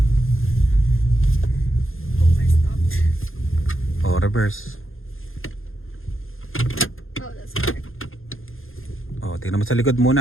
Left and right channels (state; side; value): late; right; 0.60 ms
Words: stopped. Reverse. That's hard. Tingnan mo sa likod